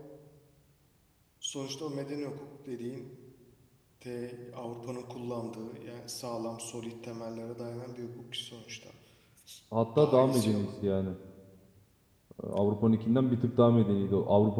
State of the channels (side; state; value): both; identical; correlation 1.00